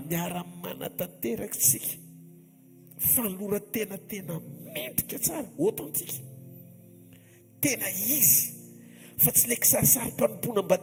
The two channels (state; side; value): identical; both; correlation 1.00